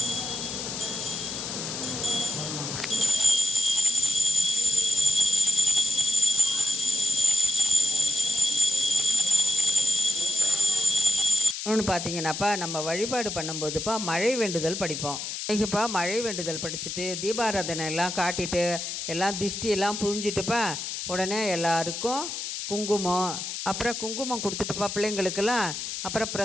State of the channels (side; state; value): left; noise; hiss, 5 dB below the sound